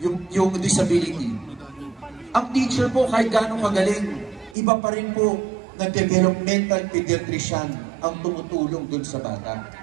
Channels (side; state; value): left; drops out; at 4.5 s